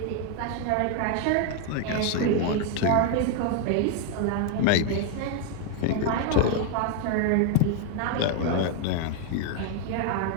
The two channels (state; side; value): different; both; correlation 0.01